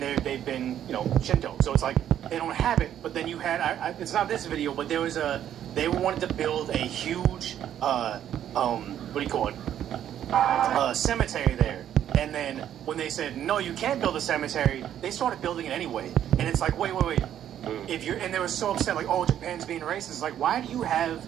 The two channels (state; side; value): quieter; left; 10.5 dB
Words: they've been Shinto. So it's like they don't have it. But then you had it's not this video, but there was they wanted to build a huge what do you call it? Cemetery there. And then when they said no, you can't build a cemetery, they started building it anyway. And it's like wait. And they were so upset, like, oh, Japan's being racist. It's like, why do you have